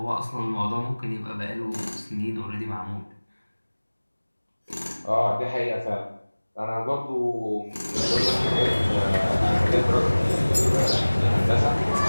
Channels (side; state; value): both; inverted; correlation -1.00